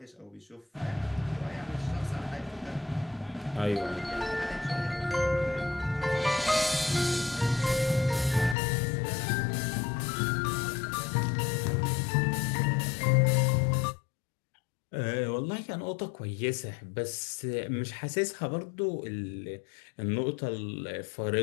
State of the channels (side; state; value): right; drops out; at 8.6 s